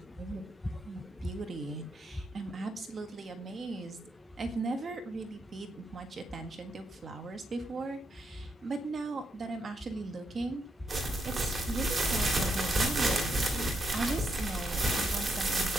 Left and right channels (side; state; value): both; normal; correlation 0.80